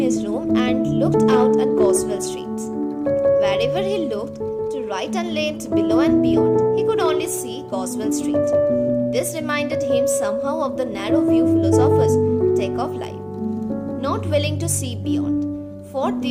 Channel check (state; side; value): identical; both; correlation 1.00